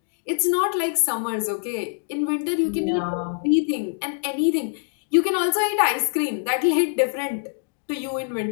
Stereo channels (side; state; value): right; silent; 59 dB below the other